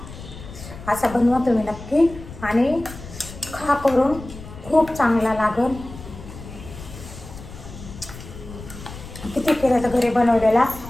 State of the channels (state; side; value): noise; left; rumble, 14 dB below the sound